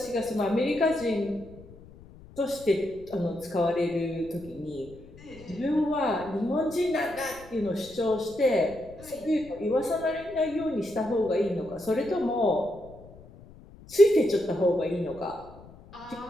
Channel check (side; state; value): left; noise; rumble, 20 dB below the sound